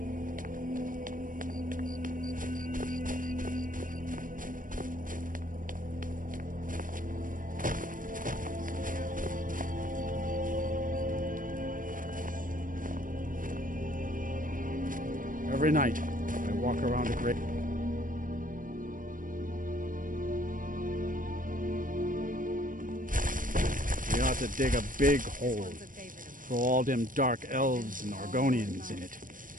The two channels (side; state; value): left; late; 0.39 ms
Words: Every night, I walk around a great... We ought to dig a big hole, throw all them dark elves and Argonians in it,